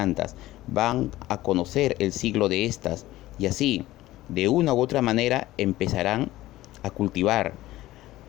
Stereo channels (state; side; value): quieter; right; 16.4 dB